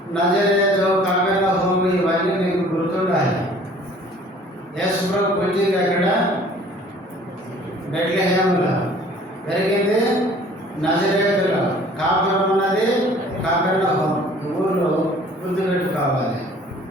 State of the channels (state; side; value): normal; both; correlation 0.52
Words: నజరేతు, కపెర్నహూము ఇవన్నీ నీకు గుర్తుండాలి. యేసు ప్రభు పుట్టింది ఎక్కడ? బెత్లెహేములో, పెరిగింది నజరేతులో, కాపురం ఉన్నది కపెర్నహూము. ఊర్లో గుర్తుపెట్టుకోవాలి.